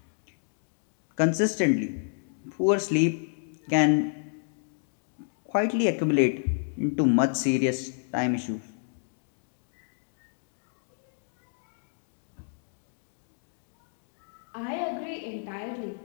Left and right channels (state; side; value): silent; right; digital silence